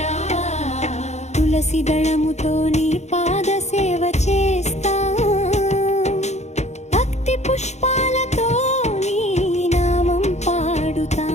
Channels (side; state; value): right; late; 0.33 ms